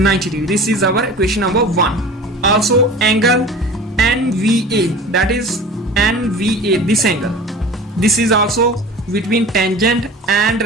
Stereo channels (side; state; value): both; normal; correlation 0.39